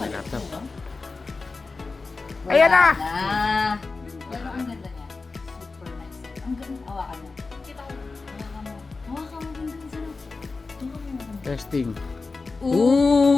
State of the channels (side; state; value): right; quieter; 4.0 dB